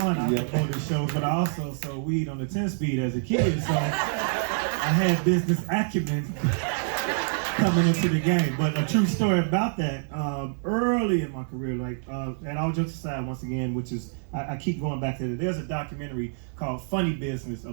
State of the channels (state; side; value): silent; left; digital silence